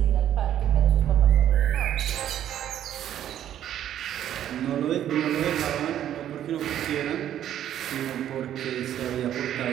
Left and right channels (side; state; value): left; quieter; 11.0 dB